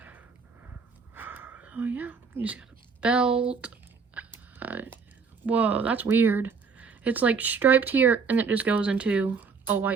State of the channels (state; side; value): quieter; left; 5.4 dB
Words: Oh yeah, you just got a belt. Whoa, that's weird. It's like striped here, and it just goes into a